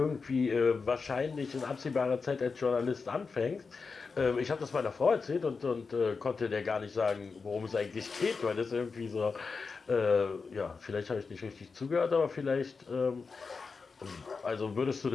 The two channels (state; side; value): quieter; right; 4.8 dB